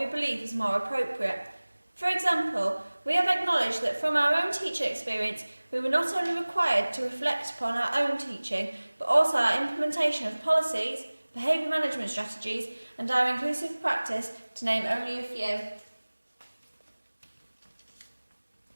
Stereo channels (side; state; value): both; inverted; correlation -1.00